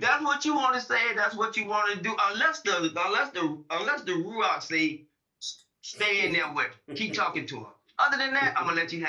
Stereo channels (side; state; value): both; identical; correlation 1.00